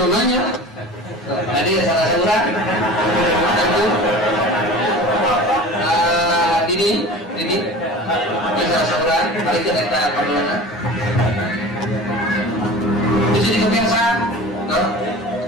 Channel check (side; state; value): both; normal; correlation 0.37